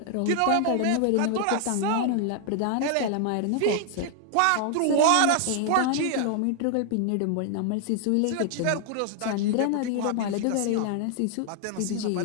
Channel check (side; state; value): both; different; correlation 0.00